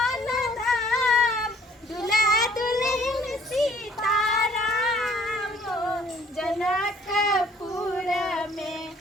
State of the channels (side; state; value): both; normal; correlation 0.59